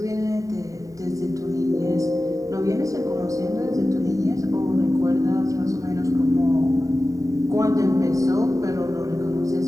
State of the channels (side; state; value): left; late; 0.16 ms